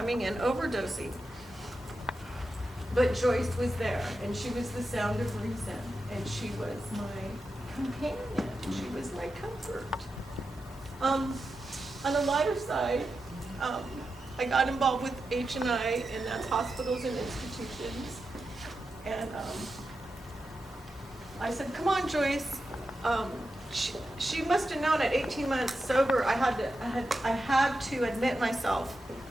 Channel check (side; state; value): both; normal; correlation 0.89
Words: in overdosing. But Joyce was there, and she was the sound of reason, and she was my companion. She was my comfort. On the lighter side, I got involved with H&I, and that's hospitals and institutions. And I said, come on, Joyce. She must have known at 18 months sober, I had to admit myself.